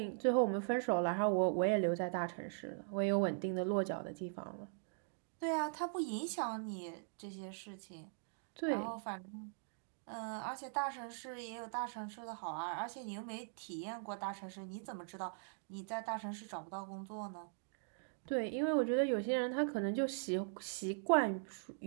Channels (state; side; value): silent; left; digital silence